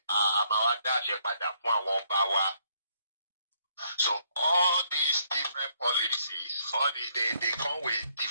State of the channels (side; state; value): both; inverted; correlation -0.69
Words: a máa wá dá àṣẹ padà fún àwọn ọba wa. So all these different policies, all these they come with